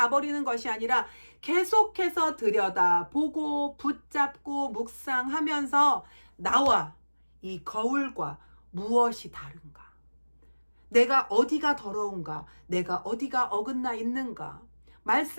것이 아니라 계속해서 들여다보고 붙잡고 묵상하면서 나와 이 거울과 무엇이 다른가? 내가 어디가 더러운가? 내가 어디가 어긋나 있는가?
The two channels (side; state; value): both; inverted; correlation -1.00